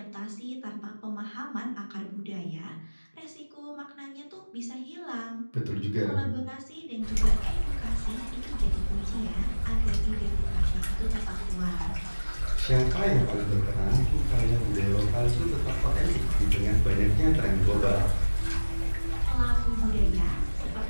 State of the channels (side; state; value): both; inverted; correlation -1.00